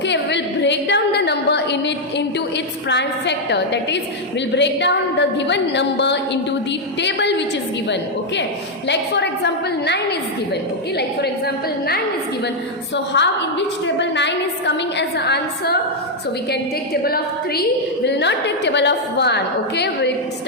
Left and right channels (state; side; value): normal; both; correlation 0.00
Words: we will break down the number into its prime factor. That is, we'll break down the given number into the table which is given. Okay, like for example 9 is given. Okay, like for example 9 is given. So how, in which table 9 is coming as an answer? So we can take table of 3. We will not take table of 1. Okay, we will